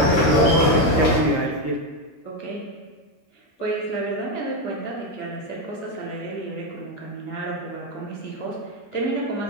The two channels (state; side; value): late; right; 13 ms